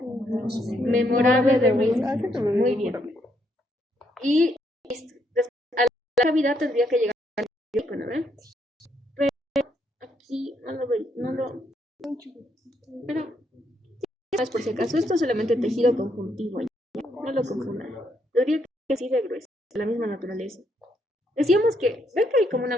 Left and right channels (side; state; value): both; normal; correlation 0.74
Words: memorable de Reed. Muy bien. Y a la cavidad tendría que llegar al nervio, ¿no? Pero aquí no lo. Pero más por si acaso, esto es solamente tejido conjuntivo. No lo confundan. Tendría que así de grueso, de la misma naturaleza. Decíamos que, ven que hay como una